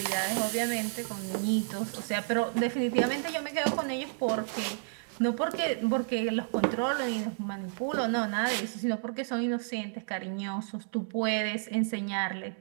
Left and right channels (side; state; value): left; silent; digital silence